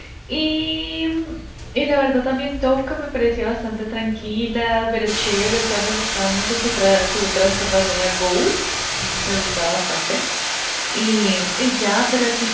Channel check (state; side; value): identical; both; correlation 1.00